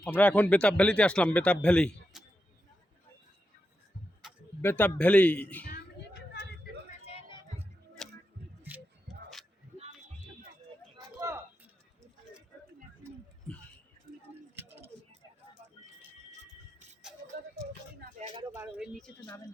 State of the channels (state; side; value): normal; both; correlation 0.87